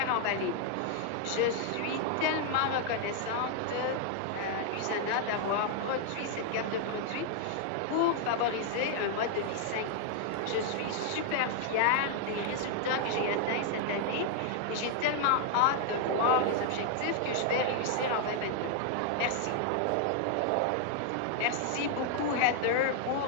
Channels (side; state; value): both; different; correlation 0.00